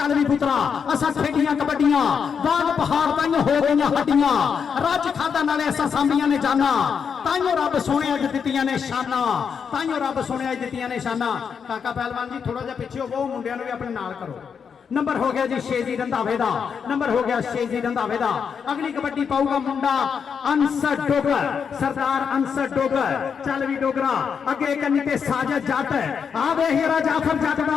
भी पुत्रा असा खेडियां कबड्डियां बाग पहाड़ ताइयों हो गई हड्डियां रज खादा नाले असा सांभियां ने जाना ताइयों रब सोने अज दित्तियां ने शाना ताइयों रब सोने अज दित्तियां ने शाना। काका पहलवान जी थोड़ा जिहा पिछे हो मुंडियां नूं भी अपने नाल करो। नंबर हो गया जी शेजी रंधावे दा। नंबर हो गया शेजी रंधावे दा। अगली कबड्डी पाऊगा मुंडा अंसर डोगर सरदार अंसर डोगर। चल भी डोगरा अगे कन्नी ते साजद जट आ वे हीरा जाफर जट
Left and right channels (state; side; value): quieter; right; 6.7 dB